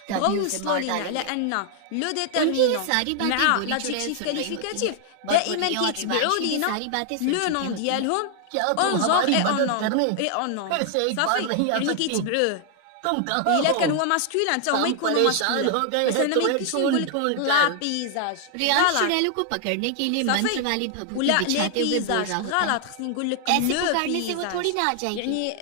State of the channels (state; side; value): different; both; correlation 0.00